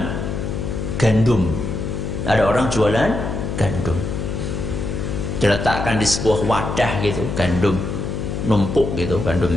gandum. Ada orang jualan gandum. Diletakkan di sebuah wadah gitu, gandum numpuk gitu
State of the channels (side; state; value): left; noise; hum, 3 dB below the sound